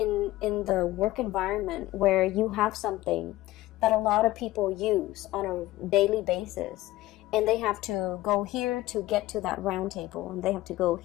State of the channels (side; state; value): right; quieter; 16.7 dB